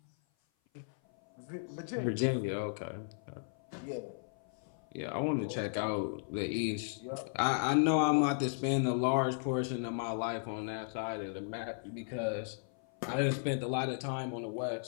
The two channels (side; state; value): right; silent; 54 dB below the other